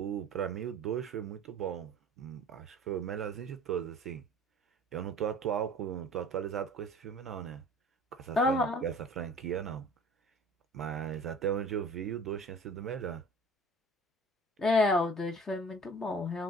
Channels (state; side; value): normal; both; correlation 0.45